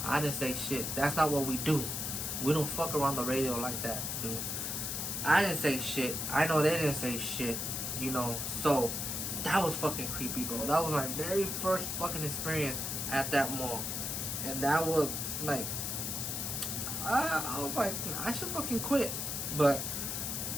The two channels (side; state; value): left; noise; hiss, 2 dB below the sound